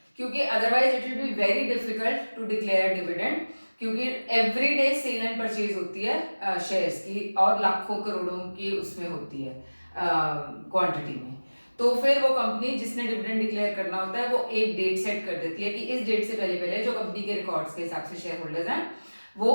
क्योंकि otherwise it will be very difficult to declare dividend, क्योंकि every day sale and purchase होती है शेयर्स की और लाखों करोड़ों की उसमें होती है क्वांटिटी में। तो फिर वो कंपनी जिसने डिविडेंड डिक्लेयर करना होता है वो एक डेट सेट कर देती है कि इस डेट से पहले पहले जो कंपनी के रिकॉर्ड्स के हिसाब से शेयर होल्डर्स हैं वो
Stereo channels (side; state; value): both; inverted; correlation -1.00